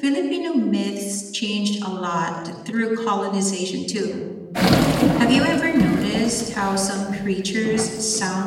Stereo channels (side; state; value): both; identical; correlation 1.00